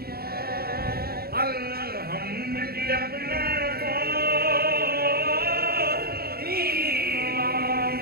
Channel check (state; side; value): late; left; 0.45 ms